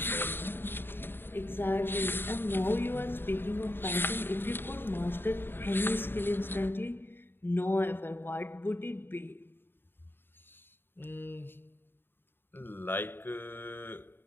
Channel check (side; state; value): right; late; 0.10 ms